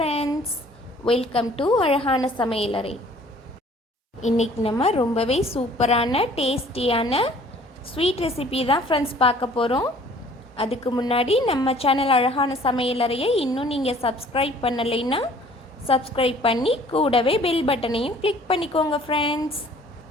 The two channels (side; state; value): both; normal; correlation 0.54